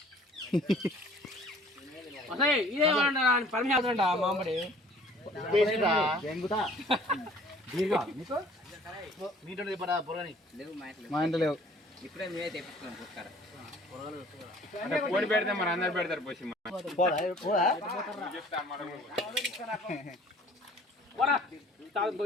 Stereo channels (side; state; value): both; normal; correlation 0.53